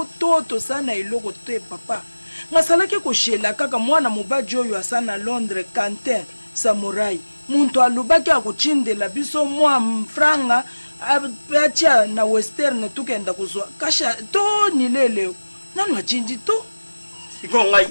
toto sana iloko te papa. Ngasalaki koshela kaka mwana mubaji oyo asana Londres Quentin Samurai muntu alubaki akuchindela biso mwa mfranga acha na western tukenda kuzwa kasha to nilele nanu achinji to iko ngai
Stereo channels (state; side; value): inverted; both; correlation -1.00